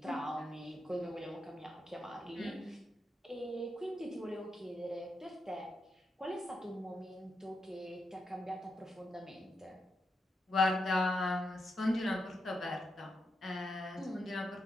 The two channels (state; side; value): normal; both; correlation 0.84